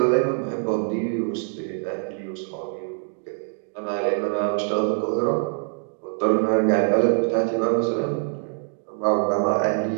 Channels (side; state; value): left; silent; 62 dB below the other